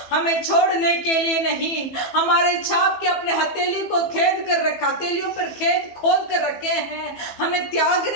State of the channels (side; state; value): right; late; 15 ms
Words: हमें छोड़ने के लिए नहीं, हमारे छाप के अपने हथेली को खेद कर रखा, हथेलियों पर खेद खोद कर रखे हैं। हमें